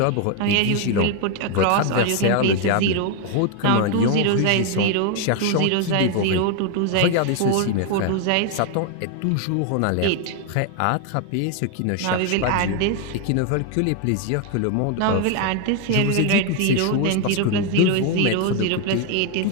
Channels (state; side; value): different; both; correlation 0.01